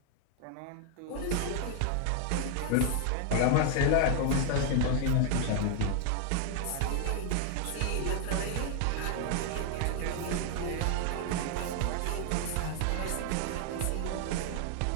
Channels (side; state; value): both; different; correlation 0.00